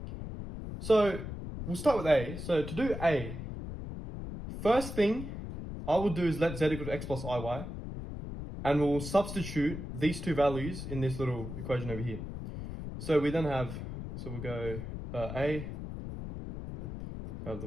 So we'll start with A. So to do A, first thing I will do is let z equal to x plus iy, and we'll substitute these two values in this little equation over here. So we then have, so we'll go A, have the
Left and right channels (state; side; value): noise; left; rumble, 8 dB below the sound